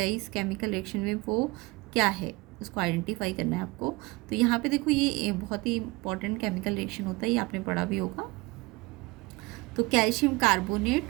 इस केमिकल रिएक्शन में वो क्या है, उसको आइडेंटिफाई करना है आपको। तो यहाँ पे देखो ये बहुत ही इंपॉर्टेंट केमिकल रिएक्शन होता है, ये आपने पढ़ा भी होगा। तो कैल्शियम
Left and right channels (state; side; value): quieter; left; 23.6 dB